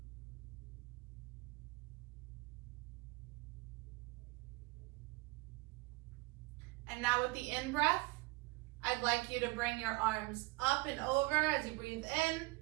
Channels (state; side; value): quieter; left; 23.7 dB